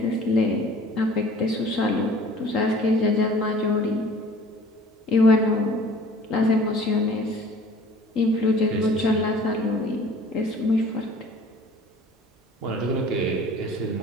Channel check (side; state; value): both; normal; correlation 0.49